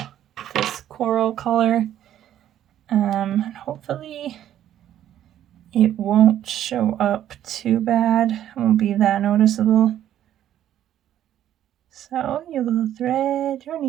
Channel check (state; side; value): quieter; left; 11.4 dB